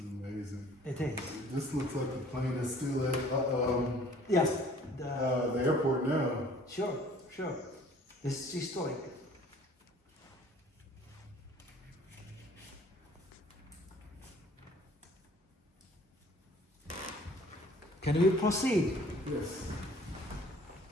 amazing. It is. This looks like the plane is still at Yes. the airport now. Sure. It's historic. Can we proceed? Yes.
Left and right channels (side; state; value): both; normal; correlation 0.54